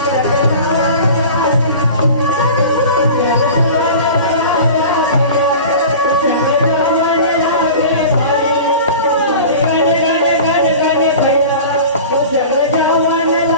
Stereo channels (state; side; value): inverted; both; correlation -0.38